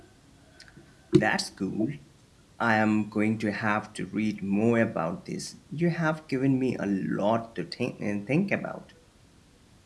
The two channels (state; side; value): identical; both; correlation 1.00